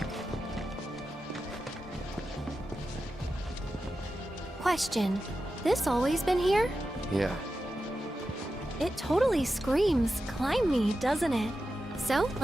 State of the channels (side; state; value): both; normal; correlation 0.91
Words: Question. This always been here? Yeah. It totally screams climb me, doesn't it? So,